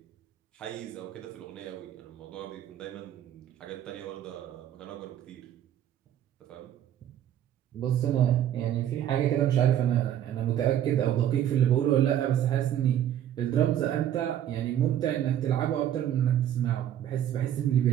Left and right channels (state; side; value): quieter; left; 10.9 dB